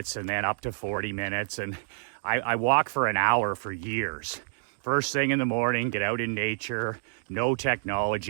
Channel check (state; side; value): silent; left; digital silence